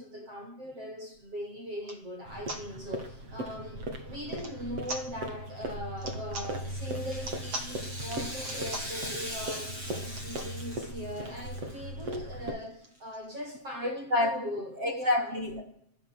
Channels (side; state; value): left; late; 7.6 ms